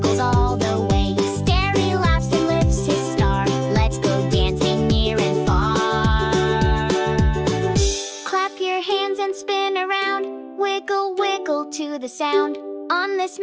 all the way. Stary laughs and lifts his star. Let's go dancing near and far. Clap your hands and spin around. Wiggle, wiggle to the sound. On this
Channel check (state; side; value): identical; both; correlation 1.00